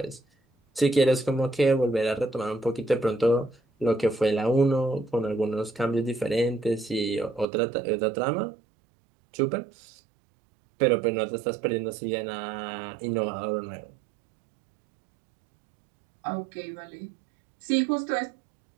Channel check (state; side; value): drops out; left; at 7.5 s